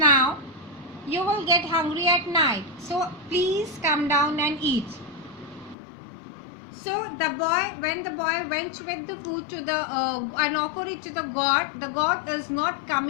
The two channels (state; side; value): drops out; right; at 5.8 s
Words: now, you will get hungry at night. So please come down and eat." So when the boy went with the food to the and offered it to the God is not